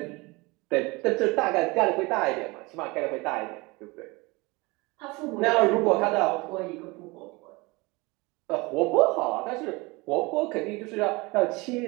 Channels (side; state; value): left; quieter; 24.7 dB